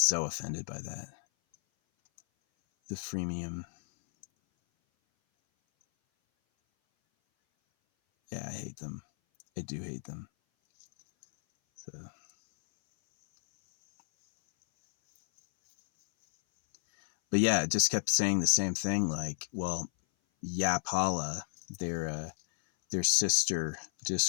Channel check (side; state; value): right; silent; 56 dB below the other